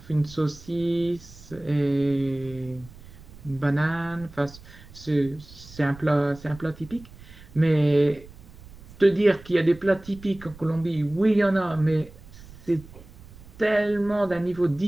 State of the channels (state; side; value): noise; right; rumble, 20 dB below the sound